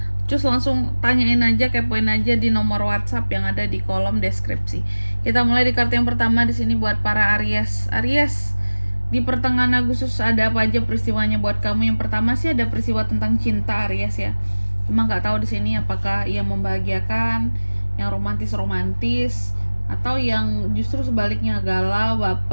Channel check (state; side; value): inverted; both; correlation -1.00